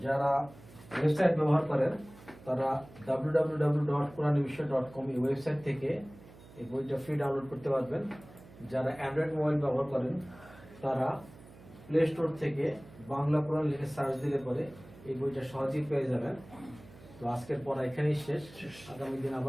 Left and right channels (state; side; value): noise; right; hum, 20 dB below the sound